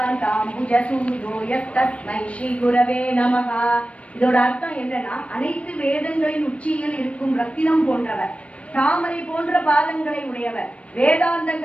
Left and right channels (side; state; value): right; late; 0.063 ms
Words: यस्तस्मै श्री गुरवे நமः. இதோட அர்த்தம் என்னன்னா, அனைத்து வேதங்களின் உச்சியில் இருக்கும் ரத்தினம் போன்றவர், தாமரை போன்ற பாதங்களை உடையவர்,